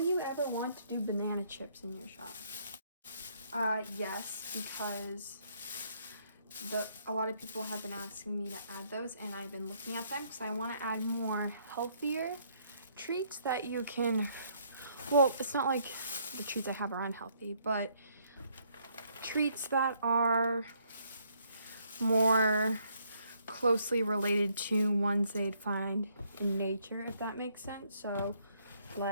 ever want to do banana chips in your shop? Yes, because a lot of people have been asking me to add those, and I've been looking at them because I want to add more healthier treats that you can, well, it's not like the treats I have are unhealthy, but treats that are more closely related to ones they'd find in nature, if that makes sense. So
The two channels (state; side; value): inverted; both; correlation -0.69